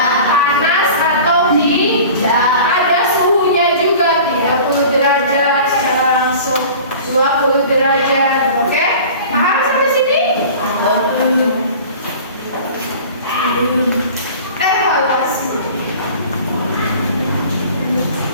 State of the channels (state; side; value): inverted; both; correlation -0.41